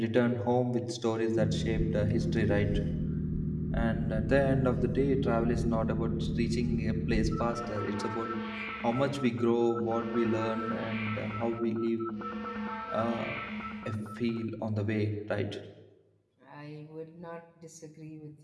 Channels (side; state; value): both; identical; correlation 1.00